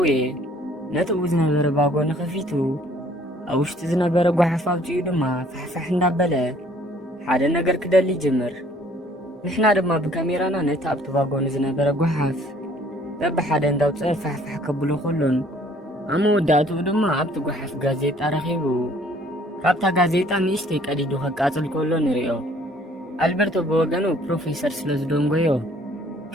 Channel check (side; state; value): both; normal; correlation 0.58